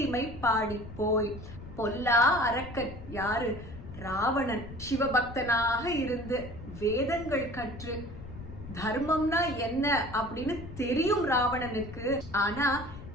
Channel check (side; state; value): left; noise; rumble, 13 dB below the sound